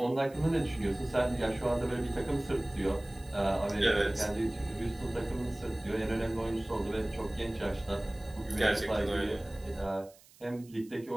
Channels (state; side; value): noise; right; hiss, 25 dB below the sound